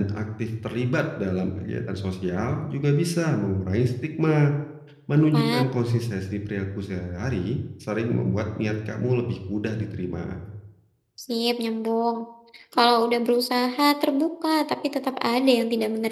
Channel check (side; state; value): both; identical; correlation 1.00